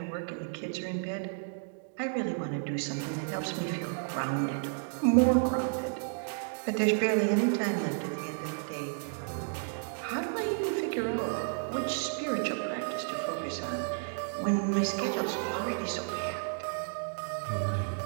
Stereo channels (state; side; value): silent; left; digital silence